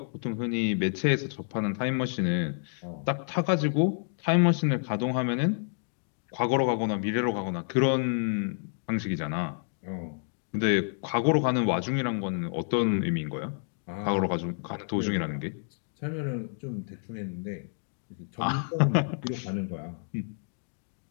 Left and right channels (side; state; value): right; silent; digital silence